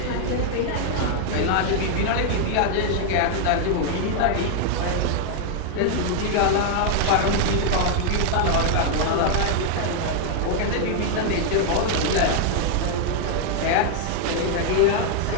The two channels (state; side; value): different; both; correlation 0.00